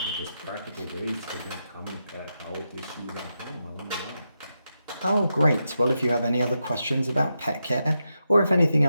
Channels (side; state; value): both; inverted; correlation -0.87